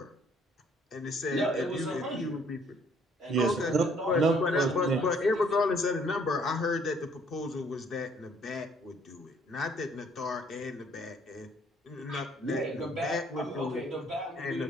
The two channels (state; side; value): normal; both; correlation 0.62